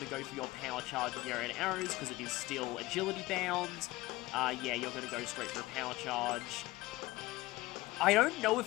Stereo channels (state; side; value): quieter; right; 19.3 dB